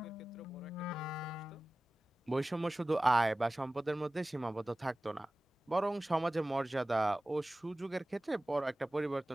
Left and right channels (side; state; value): both; normal; correlation 0.97